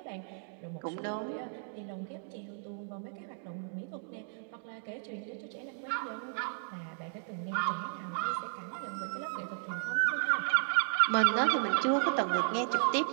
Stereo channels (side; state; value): left; silent; digital silence